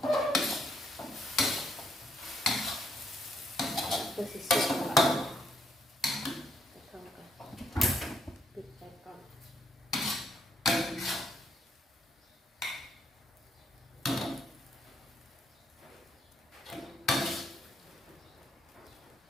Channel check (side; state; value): both; normal; correlation 0.74